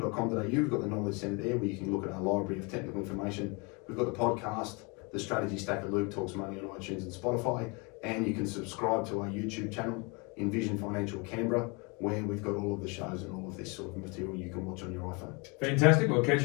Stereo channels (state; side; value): quieter; right; 30.1 dB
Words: we've got the knowledge centre there where you can look at our library of technical information. We've got the podcast, the Strategy Stacker Luke Talks Money on iTunes and Spotify, and you can subscribe to our YouTube channel, Envision Financial Canberra, where we've got all of the shows and all of this sort of material you can watch on your iPhone. Fantastic. We'll catch